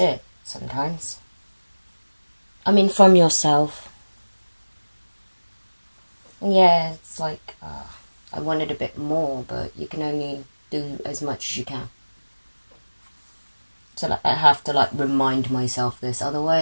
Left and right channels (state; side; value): inverted; both; correlation -1.00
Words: sometimes. I mean, from yourself. Yeah, it's like, I wanted a bit more, but you can only do as much as you can. So like, I have to like remind myself this,